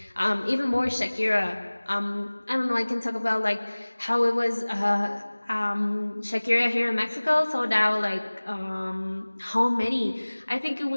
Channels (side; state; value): both; inverted; correlation -1.00